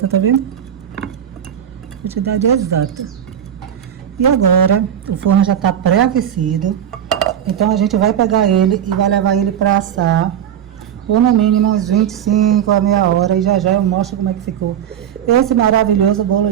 tá vendo? Quantidade exata. E agora, o forno já tá pré-aquecido. Então a gente vai pegar ele e vai levar ele para assar por no mínimo uns 25 a meia hora. E já já eu mostro como é que ficou esse maravilhoso bolo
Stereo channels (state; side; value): quieter; left; 9.5 dB